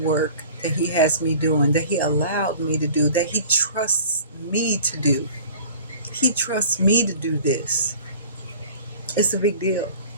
work that he has me doing, that he allowed me to do, that he trusts me to do. He trusts me to do this. It's a big deal.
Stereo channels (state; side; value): inverted; both; correlation -0.44